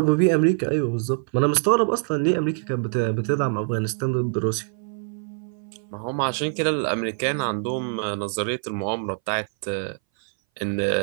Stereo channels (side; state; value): left; silent; 60 dB below the other